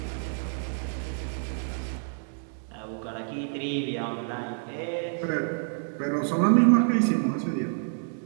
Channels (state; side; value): silent; left; 59 dB below the other